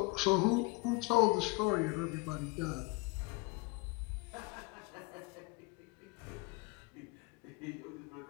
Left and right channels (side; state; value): right; quieter; 25.4 dB